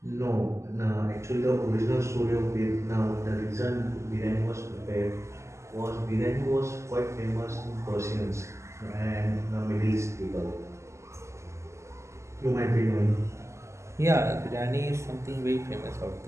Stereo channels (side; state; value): left; late; 0.13 ms